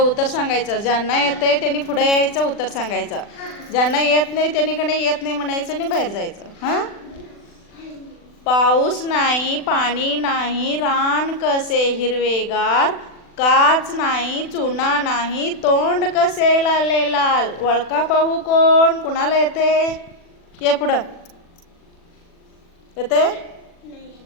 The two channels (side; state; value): right; late; 40 ms